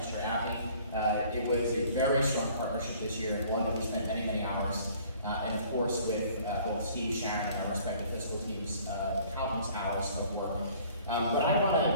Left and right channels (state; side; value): inverted; both; correlation -0.54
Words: Chair Abney. It was a very strong partnership this year, one that we spent many hours. And of course, with both Steve, Sharon, and our respective fiscal teams, countless hours of work. But I want